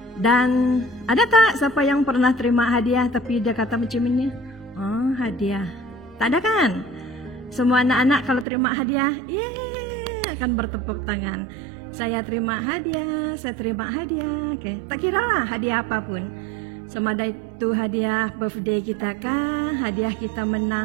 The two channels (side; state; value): left; drops out; at 8.5 s